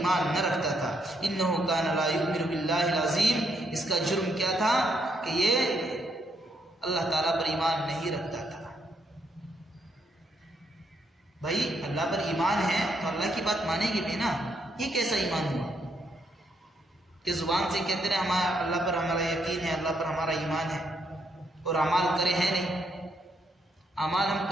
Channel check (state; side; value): normal; both; correlation 0.75